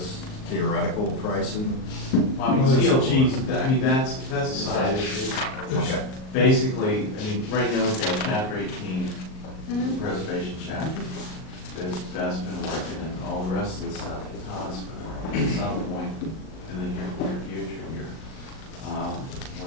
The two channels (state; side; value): late; right; 38 ms